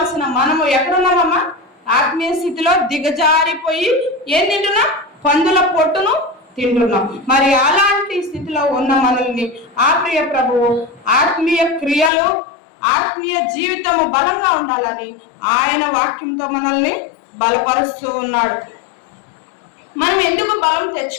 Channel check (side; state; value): right; drops out; at 12.1 s